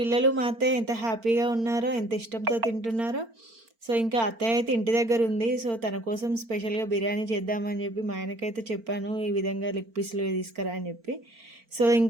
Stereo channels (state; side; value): late; left; 4.4 ms